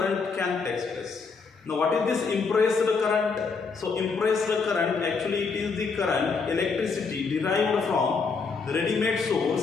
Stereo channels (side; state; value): right; quieter; 4.9 dB